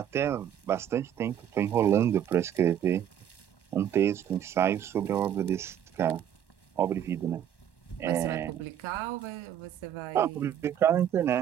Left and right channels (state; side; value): quieter; left; 10.0 dB